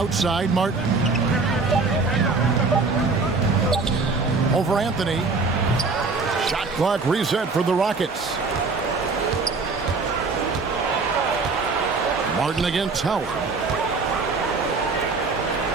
Martin. Over Anthony. Shot clock reset for the Rockets. Martin against Howard.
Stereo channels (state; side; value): quieter; left; 4.1 dB